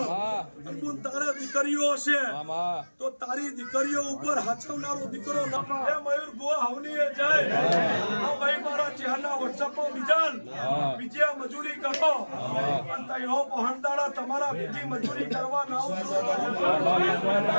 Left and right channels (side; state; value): both; inverted; correlation -1.00